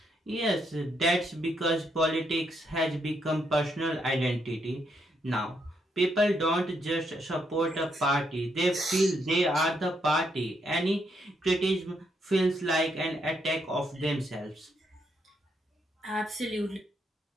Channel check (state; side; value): normal; both; correlation 0.77